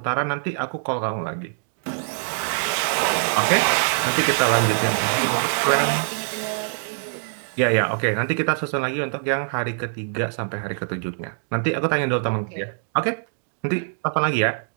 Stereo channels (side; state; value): left; silent; digital silence